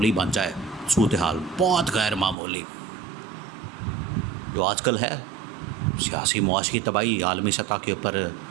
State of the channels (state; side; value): drops out; left; at 2.4 s